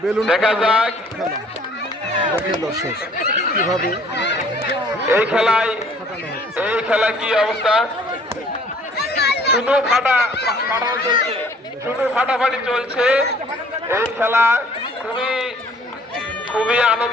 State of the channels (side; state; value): both; normal; correlation 0.57